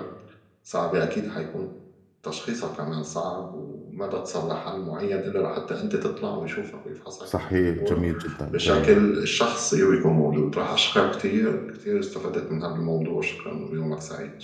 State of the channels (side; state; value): both; identical; correlation 1.00